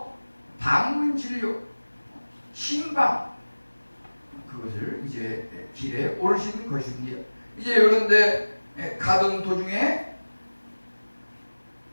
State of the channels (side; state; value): both; inverted; correlation -1.00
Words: 방문 진료, 신방, 그것을 이제 길에 오르시는 것입니다. 이제 그런데 가던 도중에